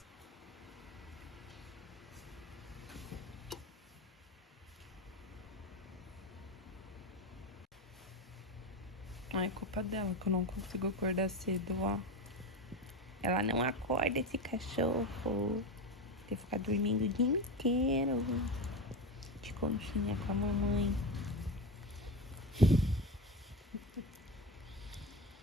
Não é culpa dela que eu não consigo acordar cedo, ó. Ela não acorda, esse cachorro. Tem que ficar dormindo o dia inteiro. De conchinha com a mamãe.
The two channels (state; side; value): normal; both; correlation 0.21